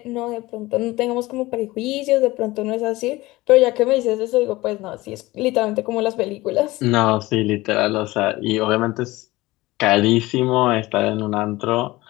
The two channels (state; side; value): quieter; right; 19.6 dB